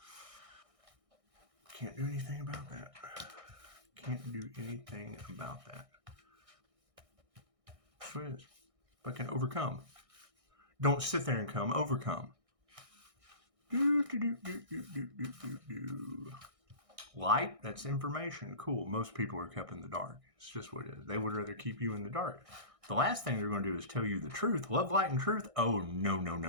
Can't do anything about that. Can't do anything about that. That's what it is. But can overcome. Don't sit there and come. Overcome. Light, that's information. Cool. Most people are kept in the dark. It's just what it is. They would rather keep you in the dark. The last thing they're going to do is tell you the truth. Love, light, and truth. Oh,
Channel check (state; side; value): late; left; 1.6 ms